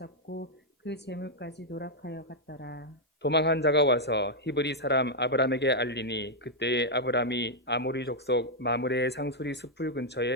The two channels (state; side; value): normal; both; correlation -0.02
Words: 그 재물까지 노락하여 갔더라. 도망한 자가 와서 히브리 사람 아브람에게 알리니 그때에 아브람이 아모리 족속 마므레의 상수리 숲을